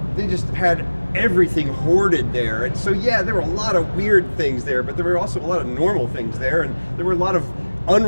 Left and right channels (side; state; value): both; inverted; correlation -1.00